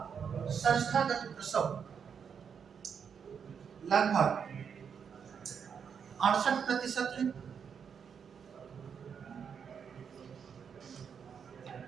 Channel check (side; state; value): left; quieter; 7.0 dB